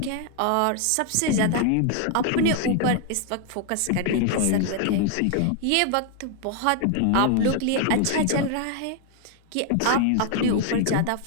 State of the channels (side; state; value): both; different; correlation 0.00